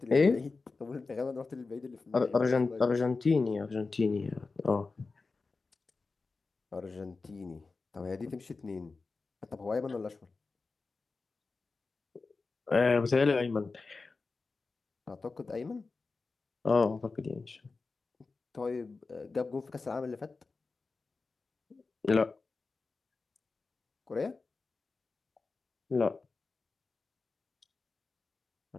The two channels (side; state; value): right; quieter; 4.1 dB